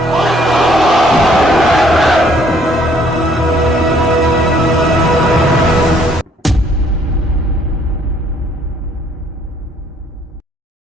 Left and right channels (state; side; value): normal; both; correlation 0.63